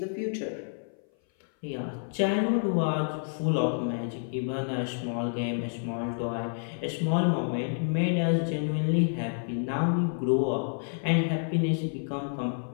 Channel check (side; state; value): right; silent; 57 dB below the other